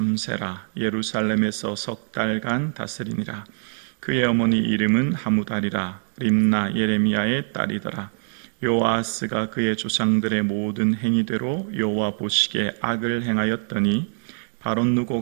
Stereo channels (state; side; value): silent; left; digital silence